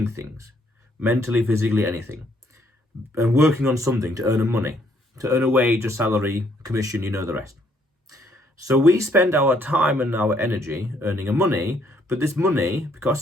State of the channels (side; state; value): both; normal; correlation 0.68